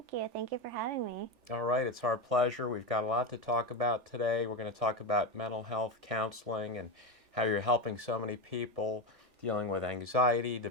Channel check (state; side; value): late; left; 3.4 ms